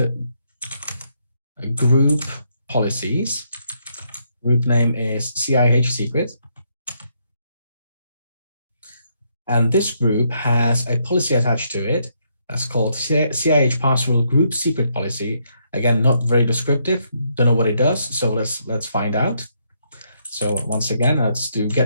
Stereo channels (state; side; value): inverted; both; correlation -0.75